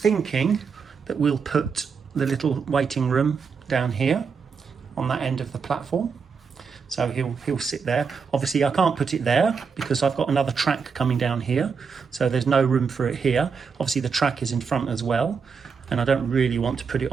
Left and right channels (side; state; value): left; quieter; 5.7 dB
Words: that we'll put the little waiting room down here on that end of the platform. So he'll sit there. Obviously I can't put it there because I've got another track coming down here. So there's no room for it here. Obviously the track is in front as well. And I don't really want to put it